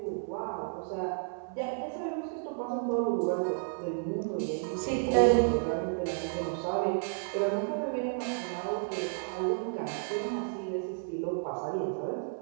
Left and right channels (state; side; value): silent; left; 56 dB below the other